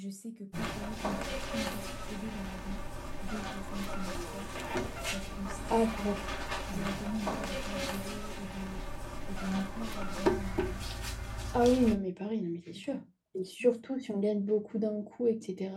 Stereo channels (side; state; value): both; identical; correlation 1.00